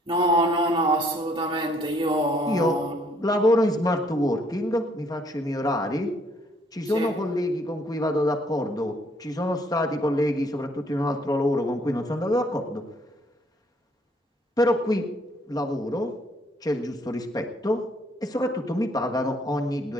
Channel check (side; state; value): both; normal; correlation 0.65